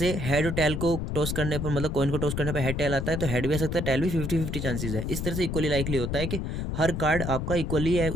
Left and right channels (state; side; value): noise; left; rumble, 3 dB below the sound